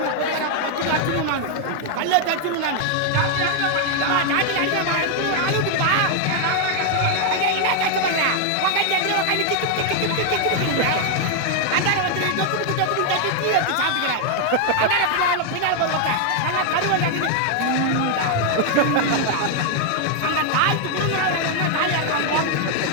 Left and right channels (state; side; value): different; both; correlation 0.00